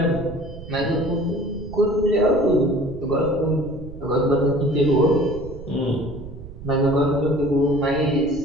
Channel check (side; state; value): right; noise; rumble, 14 dB below the sound